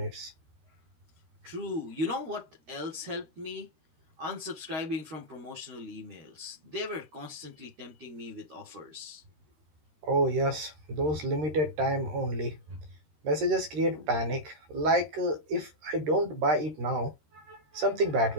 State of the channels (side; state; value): left; late; 13 ms